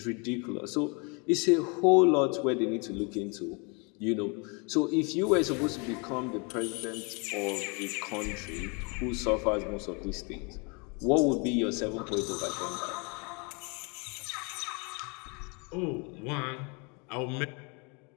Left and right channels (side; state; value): right; quieter; 32.4 dB